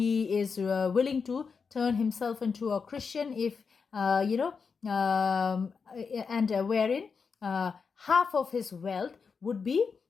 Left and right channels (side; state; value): right; quieter; 5.4 dB